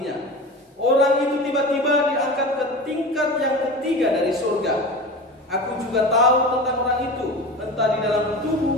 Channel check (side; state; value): both; normal; correlation 0.31